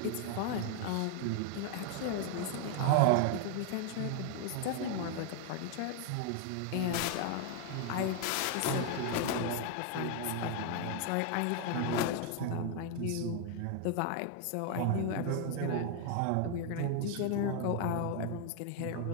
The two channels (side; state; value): both; different; correlation 0.00